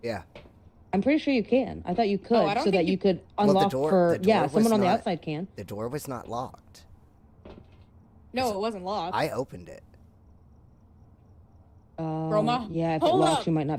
Yeah. I'm pretty sure you can. I thought you could, I don't so think that you- you could Well, the unlock door- for. the door Yeah, was someone on the not- outside can. The door was not locked. No, it wasn't locked. I opened it. Roma, Yeah, if it hold locks, up, you might not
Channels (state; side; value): identical; both; correlation 1.00